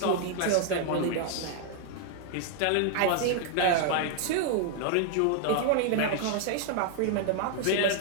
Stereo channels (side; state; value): both; different; correlation 0.00